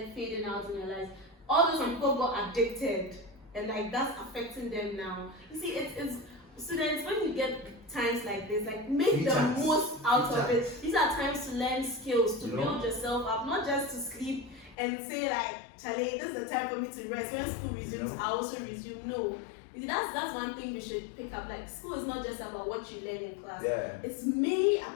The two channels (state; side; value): drops out; right; at 14.8 s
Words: fading out in their lives. All those people got addicted, and like that's affecting them now. You see, it's students, when you get times like this, like, make the most out of it. These are times to learn skills, to build yourself up, not just to sleep and say like, Charlie, this is the time for me to rest. When school resumes, I also resume. No. That's one thing we should pick up. Like, school is not just about what you learn in class. It's mainly